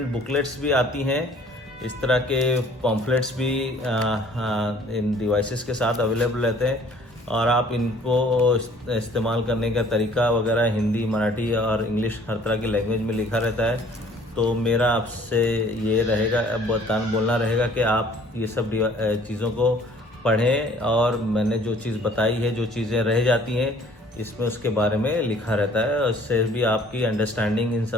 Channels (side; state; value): both; normal; correlation 0.55